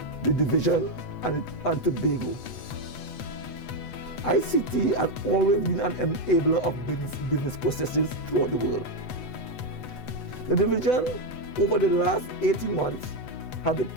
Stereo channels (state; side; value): late; right; 8.0 ms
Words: the division and Tobago? ICT has always been an enabler of business processes throughout the world. The division, over the last 18 months, has